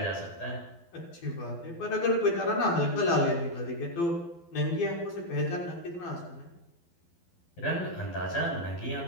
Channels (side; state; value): right; late; 12 ms